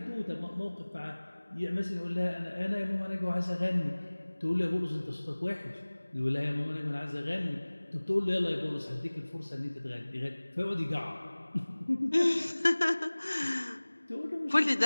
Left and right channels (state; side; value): inverted; both; correlation -1.00